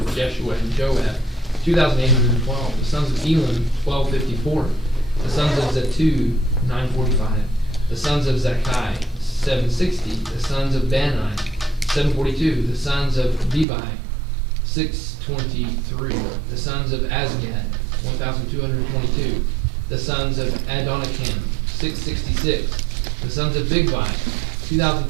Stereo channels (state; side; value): drops out; left; at 13.7 s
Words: Jeshua and Joab, 2,812. The sons of Elam, 1,254. The sons of Zatu, 945. The sons of Zakai, 760. The sons of Bani, 742. The sons of Bebai, 623. The sons of Azgad, 1,222. The sons of Adonikam, 666. The sons of Bigvai,